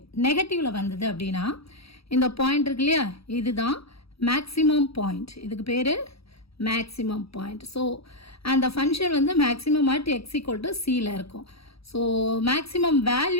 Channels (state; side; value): late; right; 0.77 ms